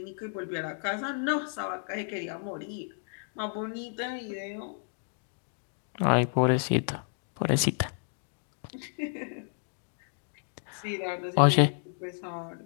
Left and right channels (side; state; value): right; silent; digital silence